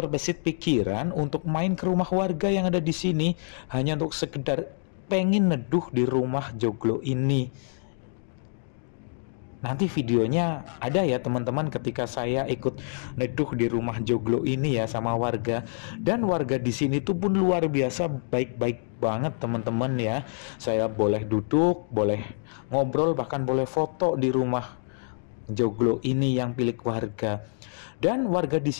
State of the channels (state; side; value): silent; right; digital silence